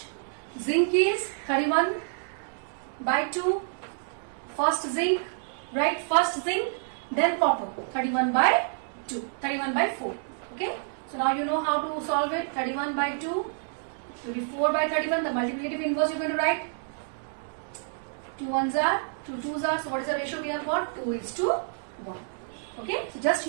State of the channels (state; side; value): silent; left; digital silence